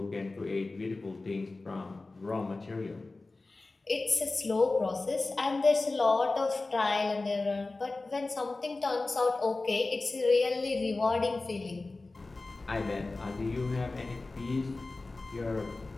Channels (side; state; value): right; quieter; 3.3 dB